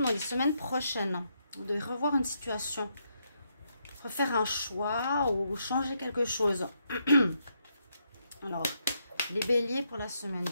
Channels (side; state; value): both; inverted; correlation -0.78